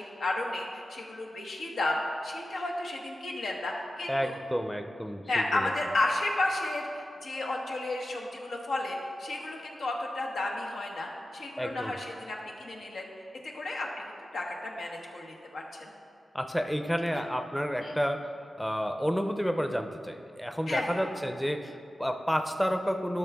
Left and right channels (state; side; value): normal; both; correlation 0.94